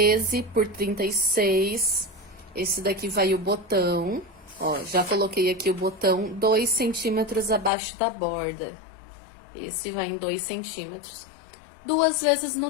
por 36. Esse daqui vai o botão. Ó, já coloquei aqui o botão 2 centímetros abaixo da borda. Esse vai em 2 centímetros. 2 vezes no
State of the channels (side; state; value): right; drops out; at 7.7 s